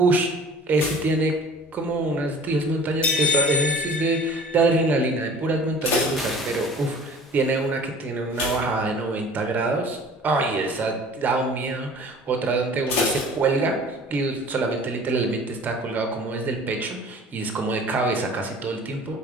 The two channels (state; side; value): normal; both; correlation 0.46